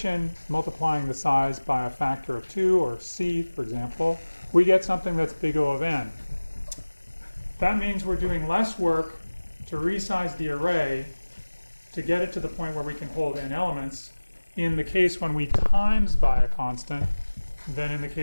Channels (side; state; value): both; inverted; correlation -1.00